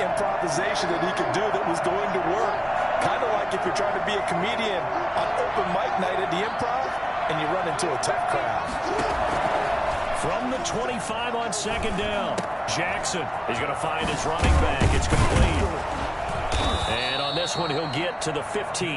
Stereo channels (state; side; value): identical; both; correlation 1.00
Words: that he could do that was going to work. Kind of like if you're trying to be a comedian on open mic night at the Improv and you run into a tough crowd. From the 25 on 2nd down, Jackson is going to find his running back. It's complete. And on this one, he'll get to the